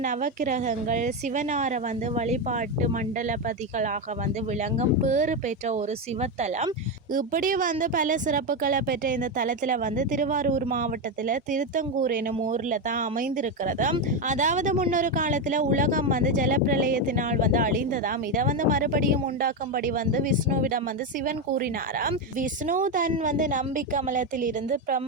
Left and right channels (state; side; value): normal; both; correlation 0.10